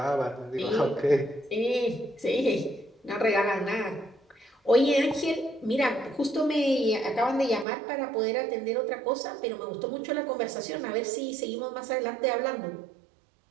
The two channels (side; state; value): left; drops out; at 7.7 s